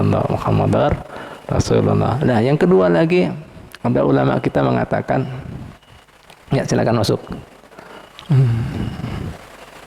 Muhammadar Rasulullah. Nah, yang kedua lagi ada ulama kita mengatakan, ya silakan masuk.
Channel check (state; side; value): identical; both; correlation 1.00